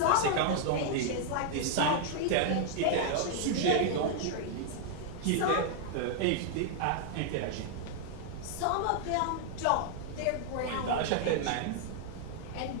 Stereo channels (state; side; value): different; both; correlation 0.00